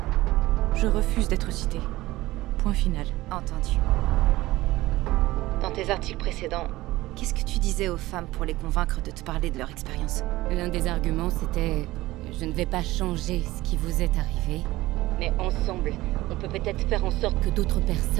Je refuse d'être citée. Point final. Entendu. Dans tes articles précédents, qu'est-ce que tu disais aux femmes pour les convaincre de te parler de leur expérience? L'un des arguments, c'était « Je ne vais pas changer ce qui vous est arrivé, mais ensemble, on peut peut-être faire en sorte que d'autres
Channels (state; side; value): quieter; left; 17.9 dB